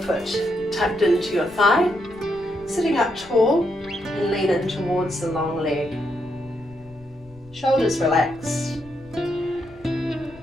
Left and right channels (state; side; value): noise; left; rumble, 23 dB below the sound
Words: tucked into your thigh. Sitting up tall and lean in towards the long leg. Shoulders relaxed.